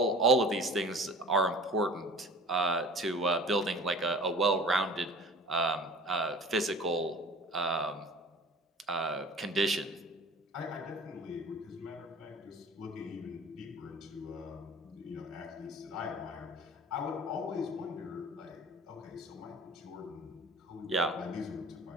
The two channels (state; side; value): normal; both; correlation 0.43